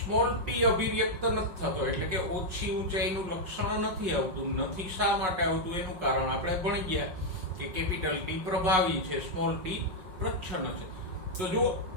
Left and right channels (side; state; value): left; late; 5.4 ms